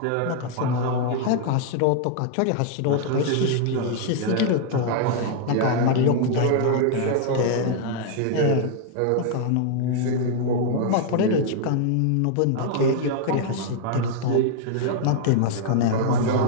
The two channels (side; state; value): both; different; correlation 0.00